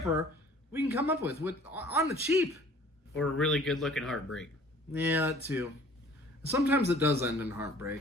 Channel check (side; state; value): both; normal; correlation 0.52